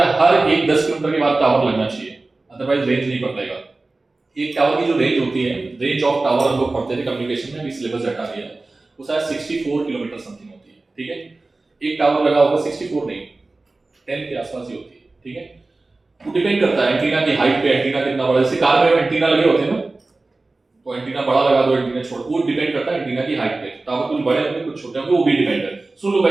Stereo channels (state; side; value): quieter; left; 3.3 dB